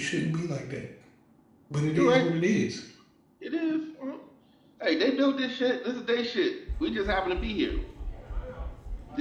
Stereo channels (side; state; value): both; identical; correlation 1.00